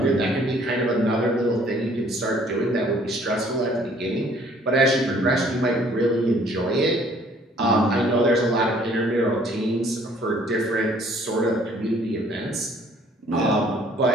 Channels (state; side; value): normal; both; correlation 0.59